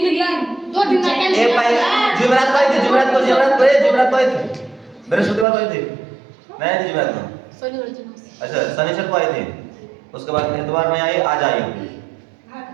दिन 2 दिन एक जुमेरात को आई थी। जुमेरात को आई थी। बृहस्पतिवार को आई थी। नहीं जुमेरात को। अच्छा शनिवार को आई थी। उसके बाद इतवार में आई, आज आई।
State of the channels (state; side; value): drops out; left; at 5.5 s